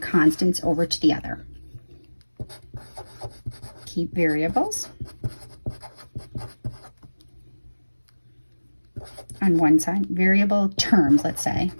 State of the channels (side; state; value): both; inverted; correlation -1.00